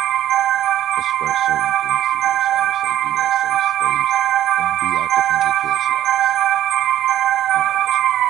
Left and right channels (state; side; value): quieter; left; 12.4 dB